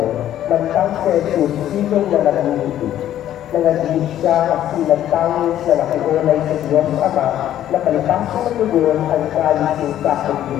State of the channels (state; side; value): quieter; right; 11.8 dB